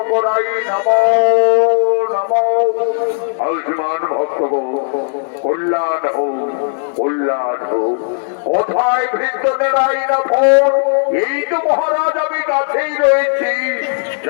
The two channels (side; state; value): right; silent; digital silence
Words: নমো নমো। আয়ুষ্মান ভক্তগণ কল্যাণ হোক, কল্যাণ হোক। কোথায় ভৃত্যদের আইনা ফোন? এই তো মহারাজ আমি কাছেই রয়েছি।